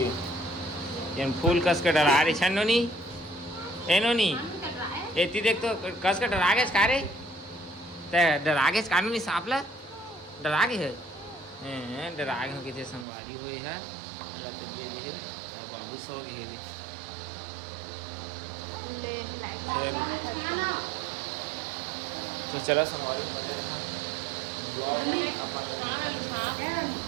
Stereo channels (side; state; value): left; drops out; at 13.1 s